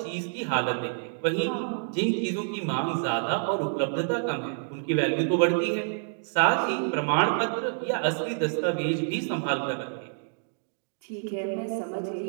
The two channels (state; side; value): silent; left; digital silence